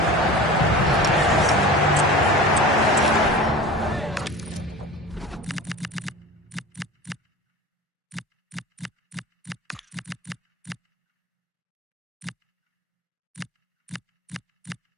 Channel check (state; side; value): normal; both; correlation 0.35